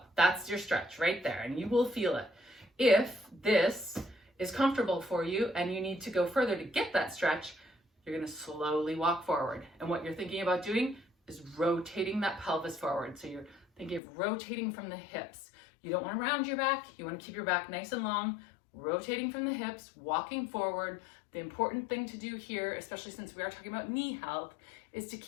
That's your stretch right there, and you will feel it. If this is comfortable for you and you need to go further to get that stretch, you're going to slowly walk forward. And what you're thinking about doing is rotating that pelvis forward. So you're thinking of rotating from the hips. You don't want to round your back. You want to keep your back nice and long, rotating from the hips, walking forward. The important thing to do here, especially since we are talking about knee health, is to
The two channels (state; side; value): drops out; right; at 14.0 s